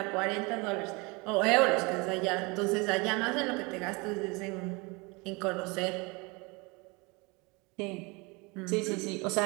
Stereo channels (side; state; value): left; quieter; 27.3 dB